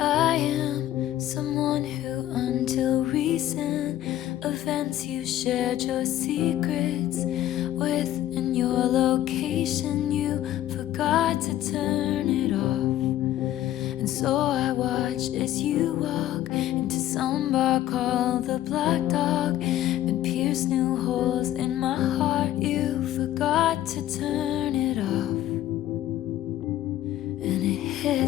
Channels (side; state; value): right; quieter; 13.1 dB